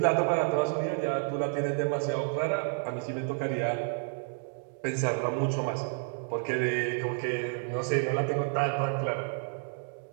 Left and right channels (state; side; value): silent; left; 57 dB below the other